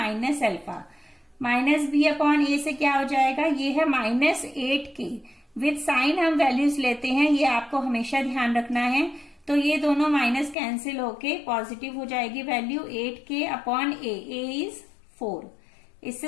alpha. Minus B upon a से क्या हो जाएगा, ये है माइनस 8k। विद साइन हम वैल्यूज लेते हैं, ये आपको हमेशा ध्यान रखना है। तो ये दोनों माइनस कैंसिल होके पॉजिटिव हो जाएगी value 8k upon A is 4।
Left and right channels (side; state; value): right; drops out; at 10.6 s